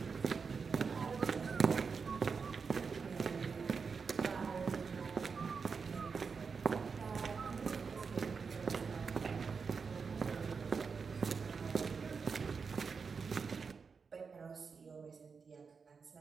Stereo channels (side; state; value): left; quieter; 5.4 dB